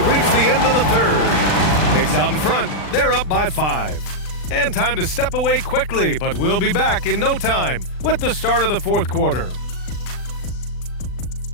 reached the end of the third. Knicks out in front. They're up by 5. And time to step away quickly, but we'll be back in no time with the start of the fourth quarter.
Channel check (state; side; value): late; right; 39 ms